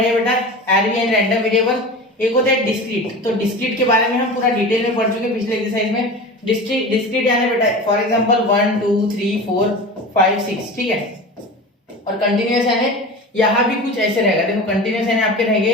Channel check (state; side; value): normal; both; correlation 0.32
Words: हैं बेटा, आरवी एंड रैंडम वेरिएबल। एक होता है डिस्क्रीट, तो डिस्क्रीट के बारे में हम पूरा डिटेल में पढ़ चुके हैं पिछले एक्सरसाइज में। डिस्क्रीट यानी बेटा फॉर एग्जांपल 1 2 3 4 5 6। ठीक है, और कंटिन्यूअस यानी यहाँ भी कुछ ऐसे रहेगा। देखो कंटिन्यूअस यानी आपके